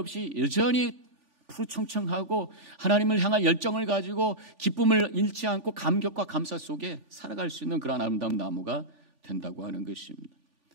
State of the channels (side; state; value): left; late; 3.4 ms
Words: 여전히 푸르청청하고 하나님을 향한 열정을 가지고 기쁨을 잃지 않고 감격과 감사 속에 살아갈 수 있는 그런 아름다운 나무가 된다고 하는 것입니다.